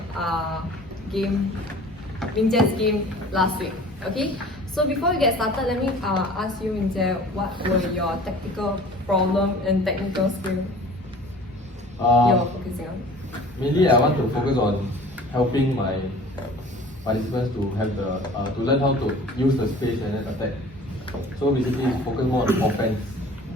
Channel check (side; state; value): both; normal; correlation 0.45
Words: game last week. Okay, so before we get started, let me ask you, Mingjie, what were your tactical problem and technical skill you're focusing on? Mainly, I want to focus on helping my participants to have to learn how to use the space and then attack. So basically, focus more on offense.